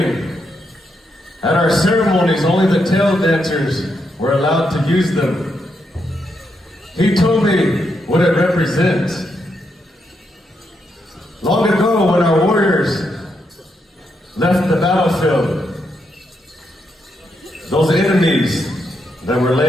at our ceremonies, only the tail dancers were allowed to use them. He told me what it represents. Long ago, when our warriors left the battlefield, those enemies that were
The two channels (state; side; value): normal; both; correlation 0.81